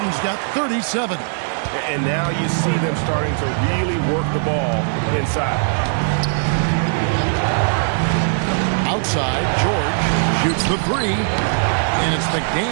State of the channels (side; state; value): left; silent; digital silence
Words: got 37. And now you see them starting to really work the ball inside. Outside, George shoots the 3. And it's